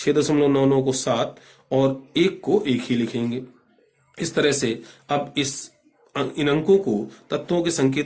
को 7 और 1 को 1 ही लिखेंगे। इस तरह से अब इन अंकों को तत्वों के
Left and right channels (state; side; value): identical; both; correlation 1.00